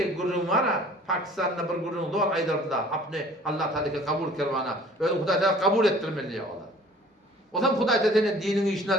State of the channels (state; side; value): normal; both; correlation 0.50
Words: gururun var ha, Pakistan'da bir gururun var aydarda. Apne Allah Teala'ya kabul kervana. Öyle Huday Teala kabul ettirmeli ya Allah. O zaman Huday Teala'nın dinini işine